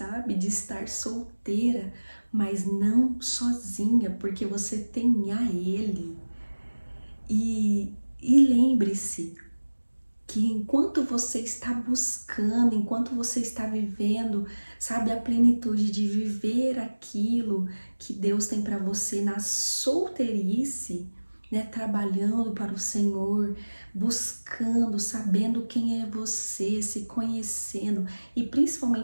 De estar solteira, mas não sozinha, porque você tem a Ele. E lembre-se que enquanto você está buscando, enquanto você está vivendo, sabe, a plenitude de viver aquilo que Deus tem para você na solteirice, né, trabalhando para o Senhor, buscando, sabendo quem é você, se conhecendo e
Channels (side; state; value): both; inverted; correlation -1.00